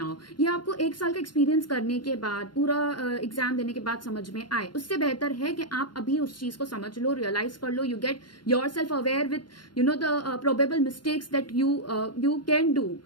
ये आपको एक साल का एक्सपीरियंस करने के बाद, पूरा एग्जाम देने के बाद समझ में आए। उससे बेहतर है कि आप अभी उस चीज को समझ लो, रियलाइज कर लो, you get yourself aware with the probable mistakes that you can do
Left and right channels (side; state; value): right; late; 0.71 ms